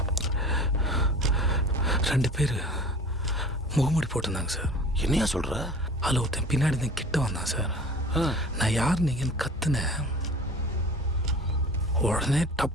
2 பேர் முகமூடி போட்டிருந்தாங்க சார். என்னையா சொல்கிற? அதில் ஒருத்தன் பின்னாடி தான் கிட்ட வந்தான் சார். நான் யார் நீங்கன்னு கத்துனேன். உடனே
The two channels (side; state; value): both; normal; correlation 0.42